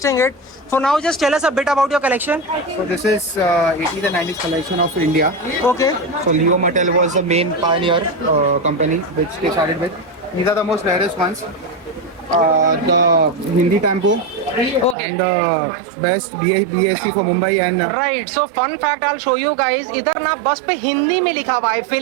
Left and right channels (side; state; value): left; drops out; at 15.0 s